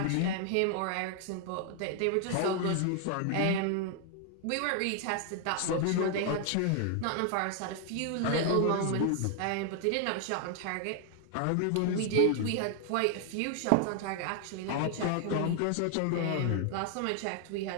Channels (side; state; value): both; different; correlation 0.00